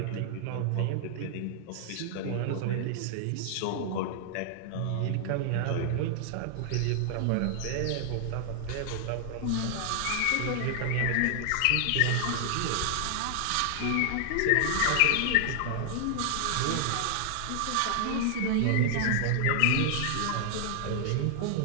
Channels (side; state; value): both; different; correlation 0.00